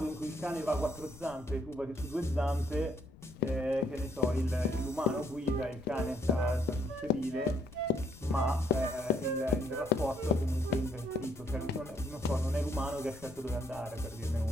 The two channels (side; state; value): left; noise; rumble, 20 dB below the sound